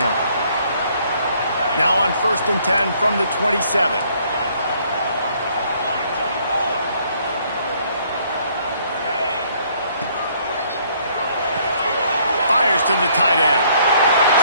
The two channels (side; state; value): both; inverted; correlation -0.64